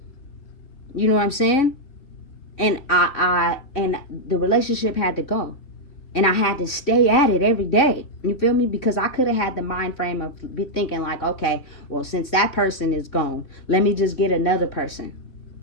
You know what I'm saying? And and the relationship had to go. And I had to stay at it every day. You feel me? Because I could have had the mind frame of be thinking like, okay, well, since that person is gone, let me just get another person.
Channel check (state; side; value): late; right; 3.6 ms